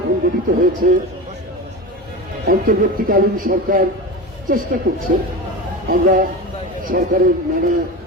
গঠিত হয়েছে, অন্তর্বর্তীকালীন সরকার চেষ্টা করছে, আমরা সরকারের নানা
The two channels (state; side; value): normal; both; correlation 0.26